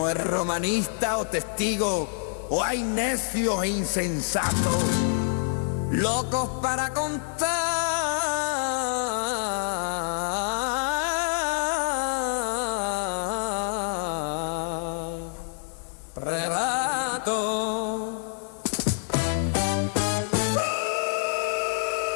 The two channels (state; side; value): silent; right; digital silence